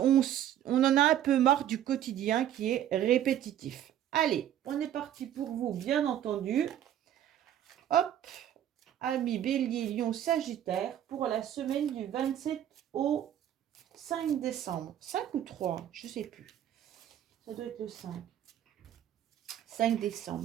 en a un peu marre du quotidien qui est répétitif. Allez, on est parti pour vous, bien entendu. Hop, amis bélier, lion, sagittaire, pour la semaine du 27 au 5 décembre. 5 ou 3, je ne sais plus. Ça doit être le 5. 5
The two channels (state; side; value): quieter; left; 11.0 dB